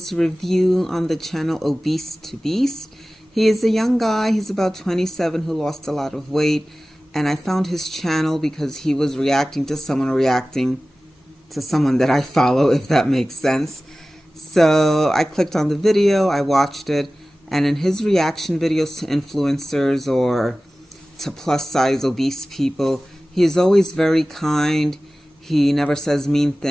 review on the channel OBESEtoBEAST. He is a young guy, he's about 27, who lost a lot of weight, and I found his channel because he was reacting to someone that I follow, if that makes sense. So I clicked on the video, I watched it, and in his reaction videos to influencers or to plus size obese people, he is always very kind. He never says mean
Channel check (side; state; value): both; normal; correlation 0.97